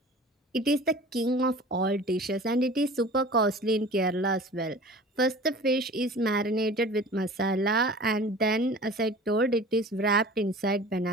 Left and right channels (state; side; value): normal; both; correlation 0.41